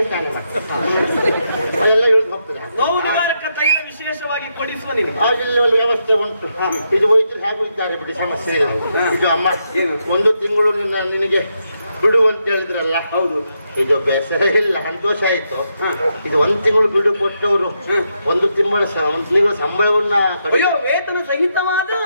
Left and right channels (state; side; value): inverted; both; correlation -0.81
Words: ಸ್ನಾನ ಮಾಡಿ ಅದೆಲ್ಲ ಇಳಿದು ಹೋಗ್ತದೆ. ನೋವು ನಿವಾರಕ ತೈಲ ವಿಶೇಷವಾಗಿ ಕೊಡಿಸುವ ನಿನಗೆ ಆಗಿಲ್ಲ, ವ್ಯವಸ್ಥೆ ಉಂಟು. ಇದು ವೈದ್ಯರು ಹೇಗೂ ಇದ್ದಾರೆ ಬಿಡಿ, ಸಮಸ್ಯೆ ಇಲ್ಲ. ಇದು ಅಮ್ಮ, 1 ತಿಂಗಳು ನಿನಗೆ ಬಿಡು ಅಂತ ಹೇಳಿದ್ರಲ್ಲ. ಹೌದು, ಇದು ಬೇಸರ ಇಲ್ಲ, ಸಂತೋಷ ಆಯ್ತು. ಇದು 1 ತಿಂಗಳು ಬಿಡು ಕೊಟ್ಟವರು 1 ತಿಂಗಳ ಸಂಬಳವನ್ನ ಅಯ್ಯೋ, ವೇತನ ಸಹಿತವಾದ